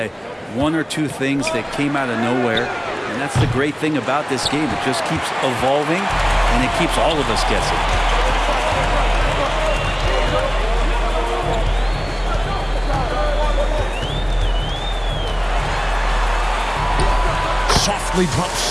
1 or 2 things that came out of nowhere. And that's the great thing about this game. It just keeps evolving, and it keeps all of us guessing. Softly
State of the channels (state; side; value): identical; both; correlation 1.00